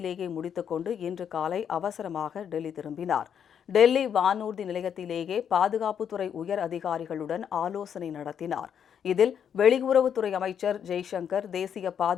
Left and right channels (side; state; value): right; quieter; 8.3 dB